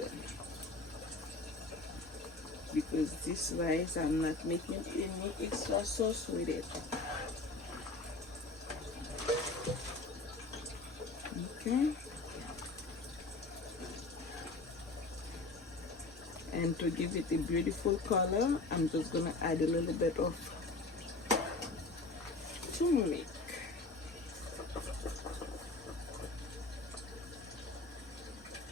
Because this rice, I'm not making any extra sauce with it. Okay. And to give it a beautiful color, I'm just gonna add a little bit of turmeric.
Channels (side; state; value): right; quieter; 3.3 dB